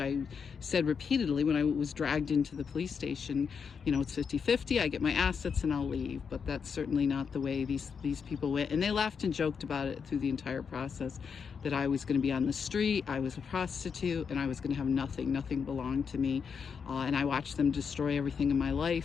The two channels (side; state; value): right; quieter; 6.3 dB